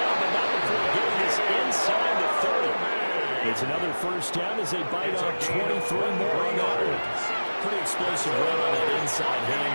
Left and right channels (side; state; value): both; inverted; correlation -1.00